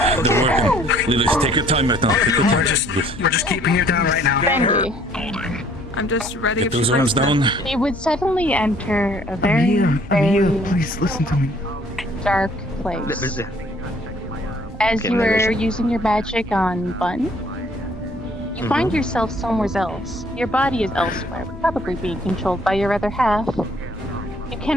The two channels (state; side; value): normal; both; correlation 0.59